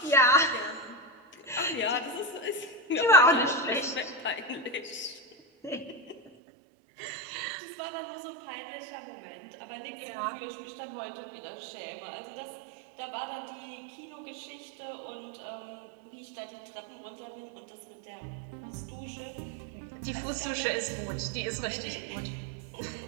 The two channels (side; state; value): left; drops out; at 6.3 s